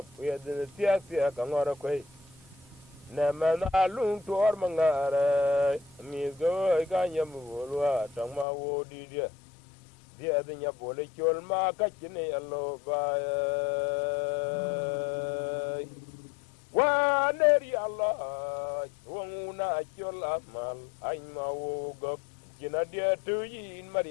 yedin tia ka ngora koi na mana lung tor mangare amiga ga nyam bolwa tangma wo di dia nya bole chol ma ka chine allo ba wa neri allah wona chol amal ay ma wo go kina dia tu yin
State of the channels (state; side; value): drops out; right; at 8.5 s